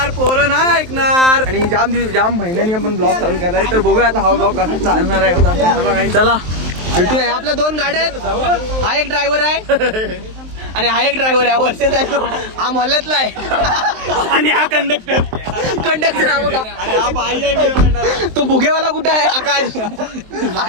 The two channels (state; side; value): late; left; 23 ms